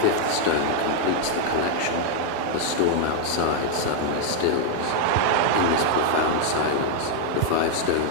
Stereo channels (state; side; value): different; both; correlation 0.00